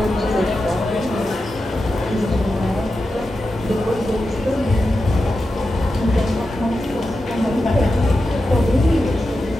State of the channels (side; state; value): both; normal; correlation 0.90